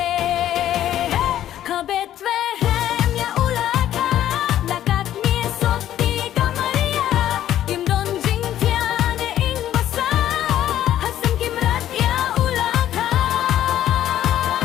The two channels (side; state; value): right; quieter; 11.9 dB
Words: Kabet vehem ya ulaka Lakat misot di kamaria Imdon jing tiane ing basa Hasam kimrat ya ulaka